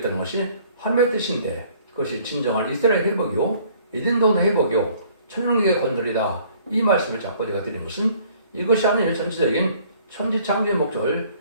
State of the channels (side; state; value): both; inverted; correlation -0.58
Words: 것이 하나님의 뜻인데, 그것이 진정한 이스라엘 회복이요 에덴 동네 회복이요 천년국의 건설이다, 이 말씀을 자꾸 제가 드린 것은 이것이 하나님의 전체적인 천지창조의 목적을